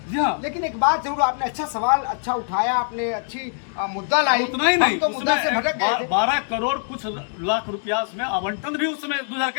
लेकिन एक बात जरूर, आपने अच्छा सवाल अच्छा उठाया, आपने अच्छी मुद्दा लाई। उतना ही नहीं, तो मुद्दा से भटक गए थे। 12 करोड़ कुछ लाख रुपया उसमें आवंटन भी उस समय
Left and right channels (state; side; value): silent; right; digital silence